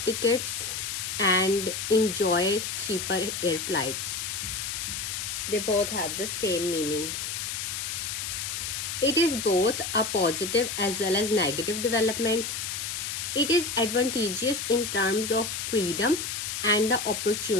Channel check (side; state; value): left; noise; hiss, 4 dB below the sound